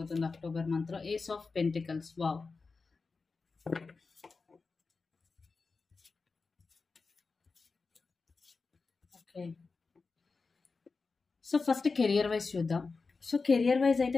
అక్టోబర్ మంత్లో. Ace of pentacles. Wow, okay. So first career wise చూద్దాం. సో కెరియర్ వైజ్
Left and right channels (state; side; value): quieter; right; 4.3 dB